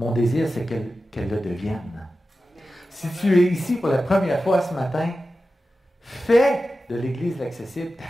désir, c'est qu'elle le devienne. Si tu es ici pour la première fois ce matin, fais de l'Église accessible ta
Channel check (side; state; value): both; normal; correlation 0.93